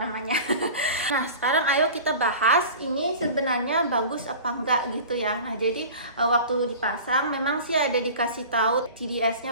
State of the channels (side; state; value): both; inverted; correlation -0.39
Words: namanya. Nah, sekarang ayo kita bahas ini sebenarnya bagus apa enggak gitu ya. Nah, jadi waktu dipasang memang sih ada dikasih tahu TDS-nya